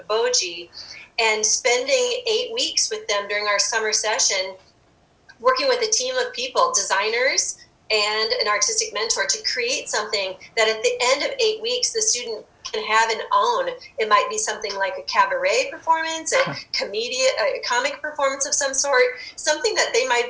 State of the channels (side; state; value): both; identical; correlation 1.00